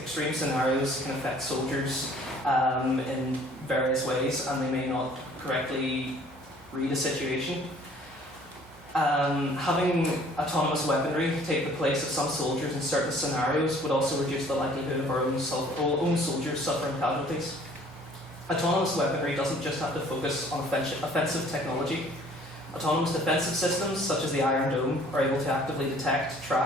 scenarios can affect soldiers in various ways, and they may not correctly read a situation. Having autonomous weaponry take the place of some soldiers in certain scenarios would also reduce the likelihood of our own soldiers suffering casualties. Autonomous weaponry doesn't just have to focus on offensive technology. Autonomous defensive systems, such as the Iron Dome, are able to actively detect,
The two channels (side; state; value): both; normal; correlation 0.55